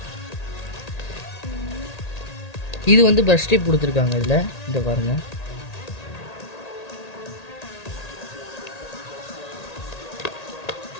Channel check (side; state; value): right; late; 1.8 ms